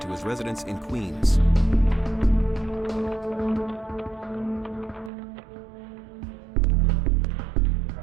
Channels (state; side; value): drops out; left; at 5.1 s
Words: his residence in Queens.